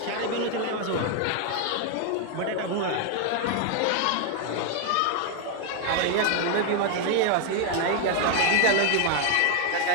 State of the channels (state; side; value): different; both; correlation 0.01